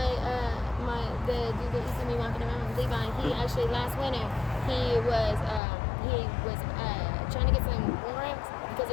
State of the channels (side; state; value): right; drops out; at 5.6 s